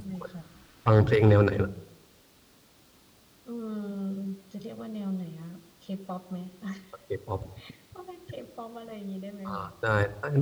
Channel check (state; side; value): identical; both; correlation 1.00